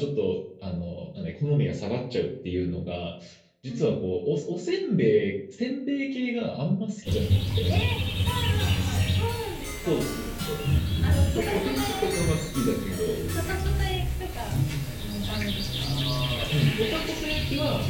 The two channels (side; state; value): both; identical; correlation 1.00